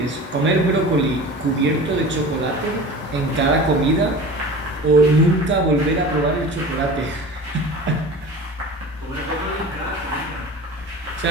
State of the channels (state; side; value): normal; both; correlation 0.37